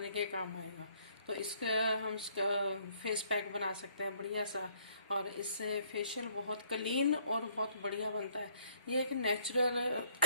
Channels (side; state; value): both; inverted; correlation -0.64